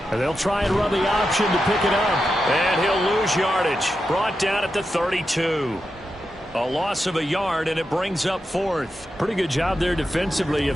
And they'll try and run the option to pick it up. And he'll lose yardage. Brought down at the 32. A loss of a yard, and it brings up 4th. Pretty good job there defensively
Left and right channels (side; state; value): both; normal; correlation 0.88